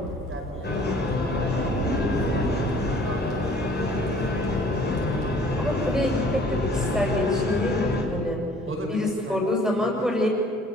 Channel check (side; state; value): both; normal; correlation 0.54